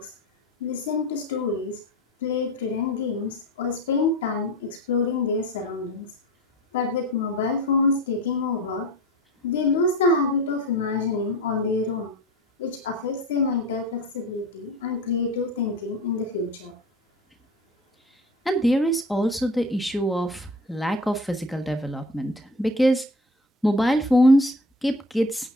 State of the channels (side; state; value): both; normal; correlation 0.36